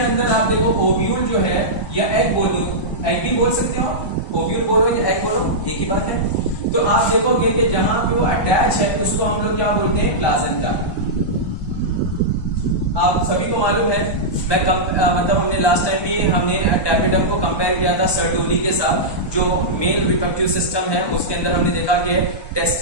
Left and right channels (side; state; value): right; late; 1.2 ms